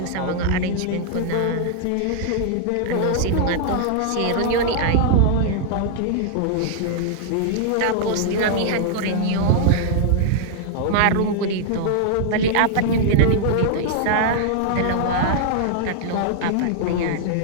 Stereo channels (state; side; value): different; both; correlation -0.01